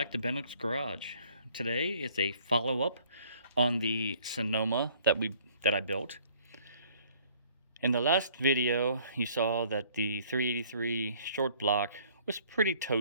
to Bennock's Garage. Today it's a follow-up on the Sonoma that I built. In the last video, you saw that the 383 short block was pretty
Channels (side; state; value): both; inverted; correlation -0.58